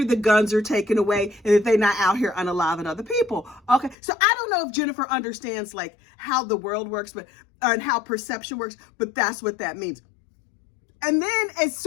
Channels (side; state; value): right; drops out; at 4.0 s